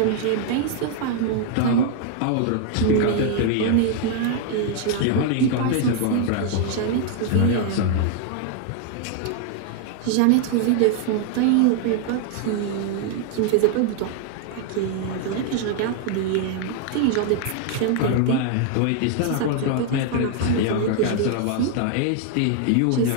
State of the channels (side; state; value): both; different; correlation 0.00